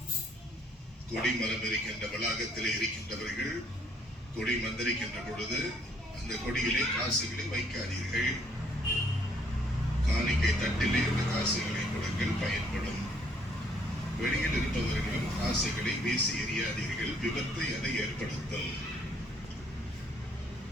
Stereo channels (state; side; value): normal; both; correlation 0.65